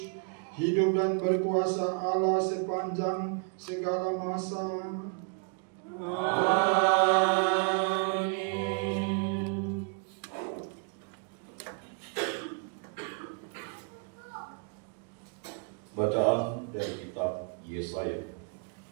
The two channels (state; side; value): quieter; left; 37.4 dB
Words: hidup dan berkuasa Allah sepanjang segala masa. Amin. Bacaan dari kitab Yesaya.